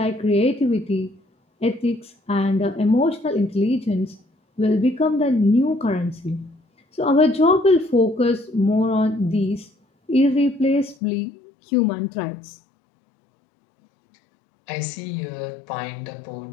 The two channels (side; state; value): right; drops out; at 11.0 s